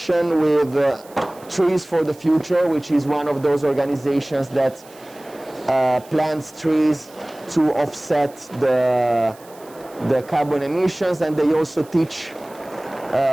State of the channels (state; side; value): noise; right; hiss, 24 dB below the sound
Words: with Trees for the Future, which is one of those organizations that plants trees to offset the carbon emissions, and they also teach